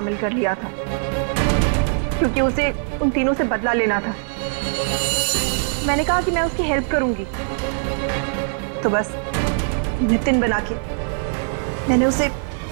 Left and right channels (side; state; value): left; silent; 63 dB below the other